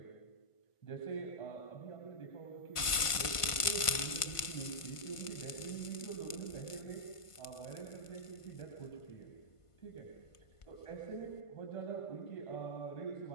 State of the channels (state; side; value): late; right; 1.5 ms